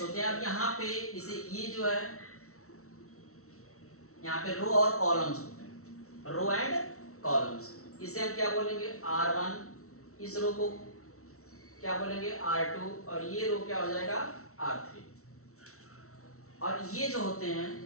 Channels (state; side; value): late; right; 0.63 ms